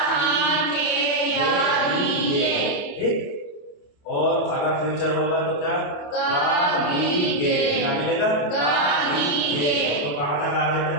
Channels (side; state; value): right; late; 28 ms